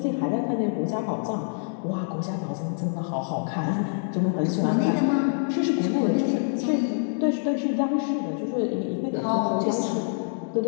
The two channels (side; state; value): right; silent; digital silence